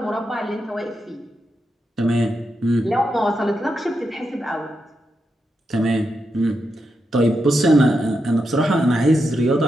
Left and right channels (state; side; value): normal; both; correlation 0.85